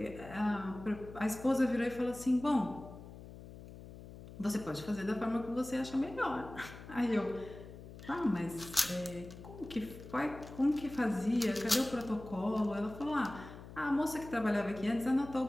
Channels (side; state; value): left; noise; hum, 15 dB below the sound